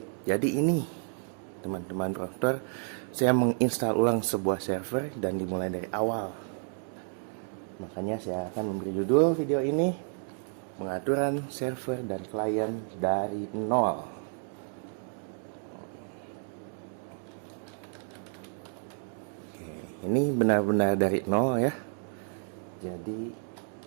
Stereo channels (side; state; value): left; silent; 57 dB below the other